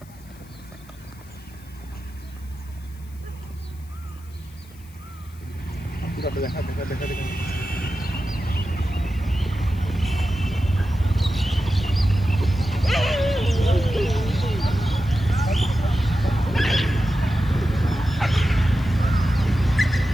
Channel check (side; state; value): left; noise; hiss, 26 dB below the sound